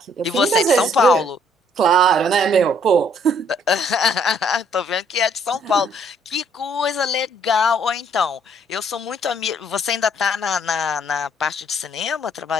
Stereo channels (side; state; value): both; normal; correlation 0.65